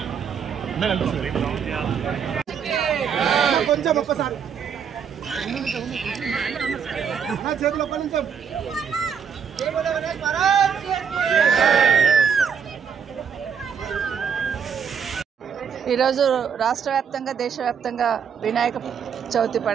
కొంచెం ఒక్కసారి నా చేతిలో కొంచెం. ఈరోజు రాష్ట్ర వ్యాప్తంగా, దేశవ్యాప్తంగా వినాయక చవితి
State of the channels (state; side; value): quieter; left; 7.1 dB